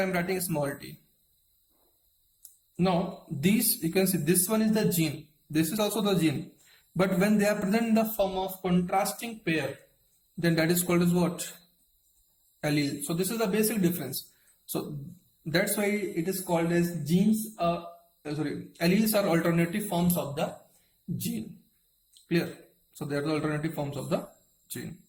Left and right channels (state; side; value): identical; both; correlation 1.00